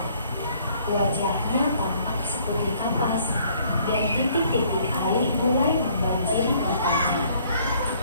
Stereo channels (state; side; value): inverted; both; correlation -0.61